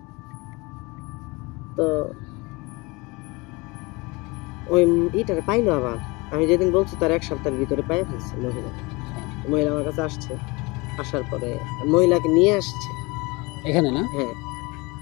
তো ওই ইটারে পাইলো আবার, আমি যেদিন বলছি তার 1 সপ্তাহের ভিতরে পাই ফেলছে মহিলা আমার কাছে আসছে। আসার পরে মহিলাকে নিয়ে আসছে এখানে না? হ্যাঁ,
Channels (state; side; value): quieter; right; 25.3 dB